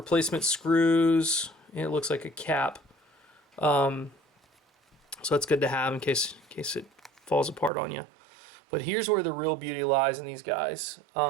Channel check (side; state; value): left; drops out; at 7.7 s